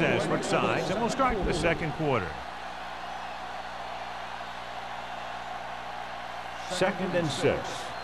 switched sides, and we'll start the second quarter. 2nd and 6.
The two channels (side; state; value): both; identical; correlation 1.00